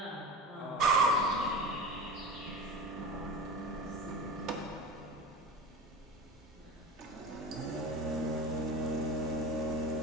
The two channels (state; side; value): normal; both; correlation 0.30